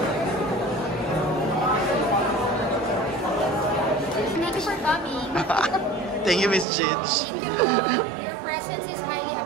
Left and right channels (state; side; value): drops out; left; at 6.7 s